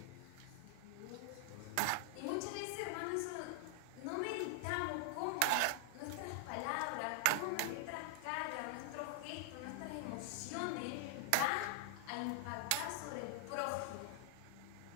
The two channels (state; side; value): different; both; correlation -0.01